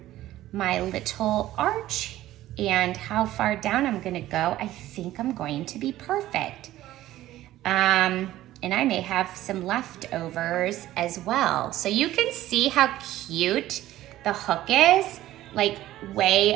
my little arch and how far down I'm gonna go, I think I'm going to be perfect. And I may have some leftovers as well. So you can see how cute the hook is, like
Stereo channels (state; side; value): quieter; left; 14.6 dB